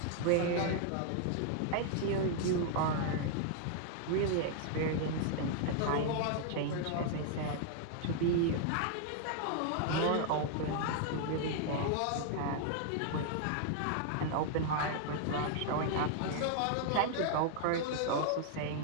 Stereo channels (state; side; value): different; both; correlation -0.01